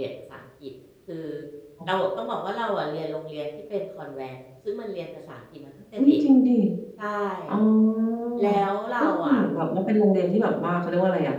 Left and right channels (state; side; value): identical; both; correlation 1.00